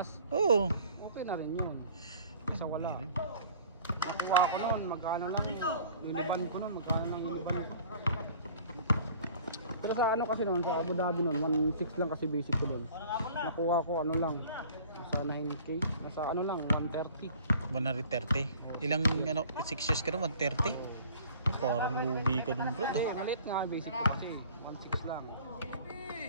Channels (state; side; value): inverted; both; correlation -0.50